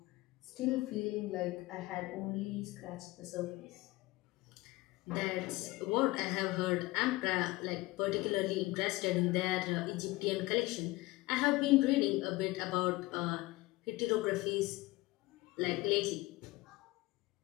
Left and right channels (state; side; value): quieter; right; 20.4 dB